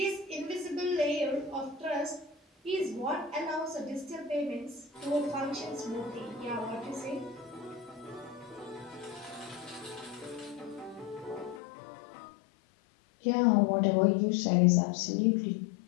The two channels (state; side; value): drops out; right; at 11.6 s